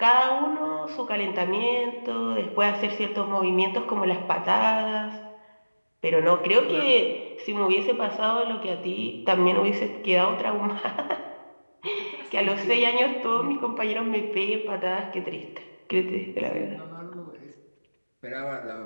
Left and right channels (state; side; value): inverted; both; correlation -1.00